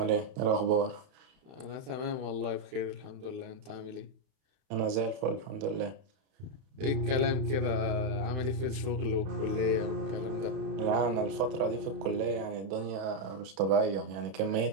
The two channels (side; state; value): left; late; 31 ms